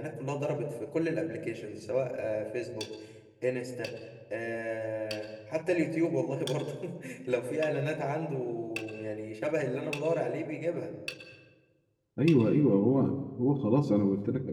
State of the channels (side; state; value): both; identical; correlation 1.00